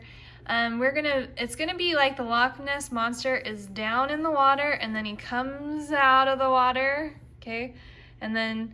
It's gonna be like the Loch Ness Monster is down in the water and then he comes out of the water, okay? And then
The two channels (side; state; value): both; identical; correlation 1.00